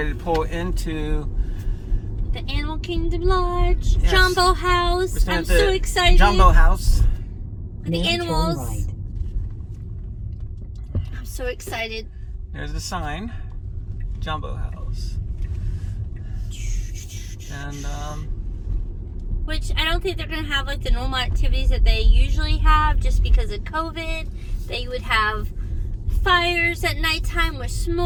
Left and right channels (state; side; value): identical; both; correlation 1.00